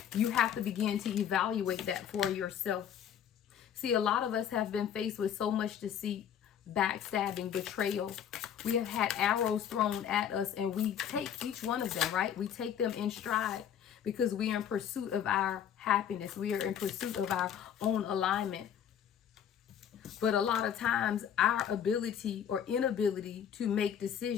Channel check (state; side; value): quieter; right; 9.1 dB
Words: You have to begin to evaluate that for yourself. See, a lot of us have been faced with so much deceit, backstabbing, betrayal. We have had arrows thrown at us, and we take each one of them, right? We take them in stride because we are in pursuit of our happiness. We are in pursuit of our own alignment. But a lot of times our ability or inability to make